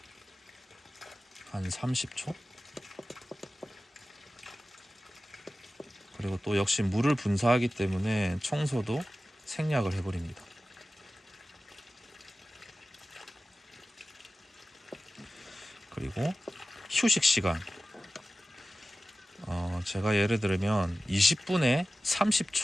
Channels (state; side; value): normal; both; correlation 0.95